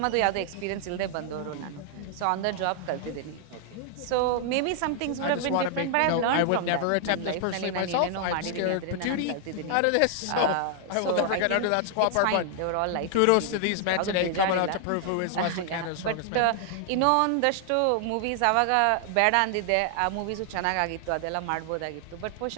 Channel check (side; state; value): both; different; correlation 0.00